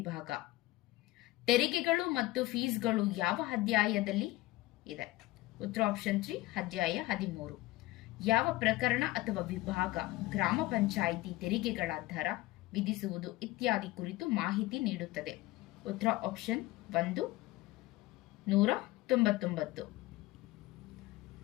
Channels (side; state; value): right; quieter; 18.4 dB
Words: ತೆರಿಗೆಗಳು ಮತ್ತು ಫೀಸ್ಗಳು ಯಾವ ಅಧ್ಯಾಯದಲ್ಲಿ ಇದೆ? ಉತ್ತರ ಆಪ್ಷನ್ 3 ಅಧ್ಯಾಯ 13. ಯಾವ ಪ್ರಕರಣ ಅಥವಾ ವಿಭಾಗ ಗ್ರಾಮ ಪಂಚಾಯಿತಿ ತೆರಿಗೆಗಳ ದರ ವಿಧಿಸುವುದು ಇತ್ಯಾದಿ ಕುರಿತು ಮಾಹಿತಿ ನೀಡುತ್ತದೆ? ಉತ್ತರ ಆಪ್ಷನ್ 1 199.